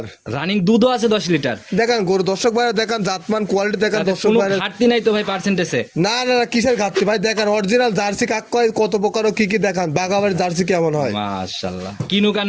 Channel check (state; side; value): identical; both; correlation 1.00